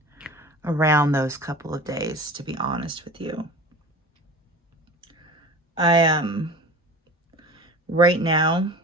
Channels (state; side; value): normal; both; correlation 0.37